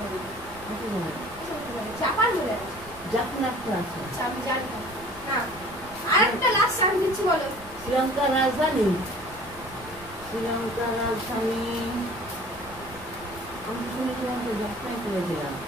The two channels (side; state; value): right; noise; rumble, 20 dB below the sound